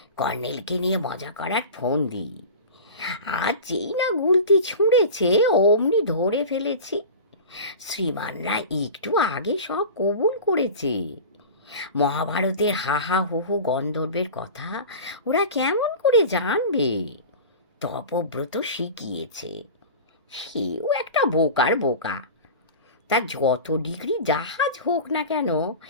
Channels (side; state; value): both; inverted; correlation -0.33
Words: কর্নেলকে নিয়ে মজা করার ফোন দিই, আর যেই না গুলতি ছুঁড়েছে অমনি ধরে ফেলেছি। শ্রীমানরা একটু আগে সব কবুল করেছে। মহাভারতের হা হা হু হু গন্ধর্বের কথা ওরা কেমন করে জানবে? তপব্রত শিখিয়েছে। সেও একটা বোকার বোকা। তার যত ডিগ্রি জাহাজ হোক না কেন,